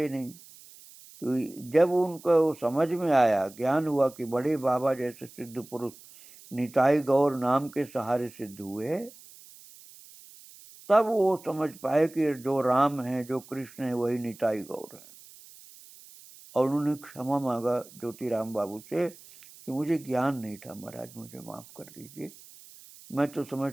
नहीं। तो जब उनको समझ में आया, ज्ञान हुआ कि बड़े बाबा जैसे सिद्ध पुरुष निताई गौर नाम के सहारे सिद्ध हुए, तब वो समझ पाए कि जो राम है, जो कृष्ण है, वही निताई गौर है। और उन्होंने क्षमा मांगा ज्योतिराम बाबू से कि मुझे ज्ञान नहीं था महाराज, मुझे माफ कर दीजिए। मैं तो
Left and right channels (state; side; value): noise; right; hiss, 21 dB below the sound